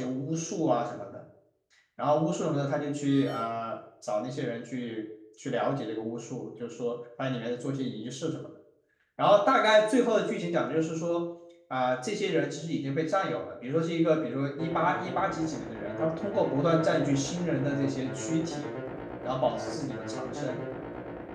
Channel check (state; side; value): identical; both; correlation 1.00